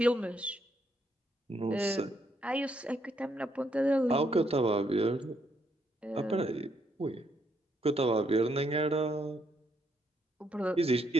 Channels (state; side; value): normal; both; correlation 0.74